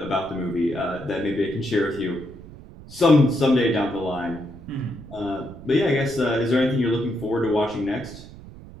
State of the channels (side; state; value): right; noise; rumble, 17 dB below the sound